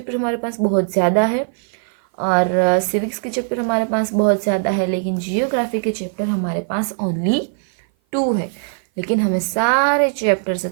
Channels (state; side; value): silent; left; 56 dB below the other